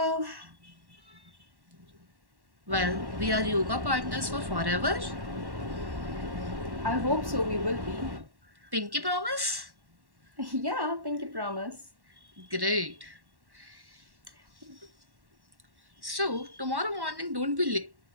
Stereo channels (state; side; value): late; left; 1.1 ms